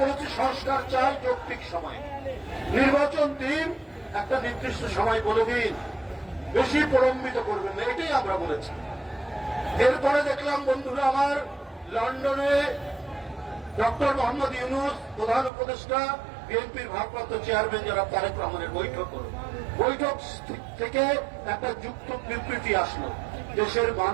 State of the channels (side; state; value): left; drops out; at 15.5 s